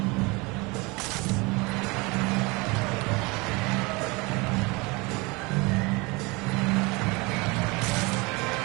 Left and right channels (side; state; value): left; quieter; 25.9 dB